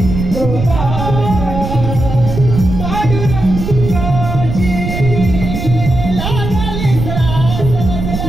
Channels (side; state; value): right; noise; rumble, 4 dB below the sound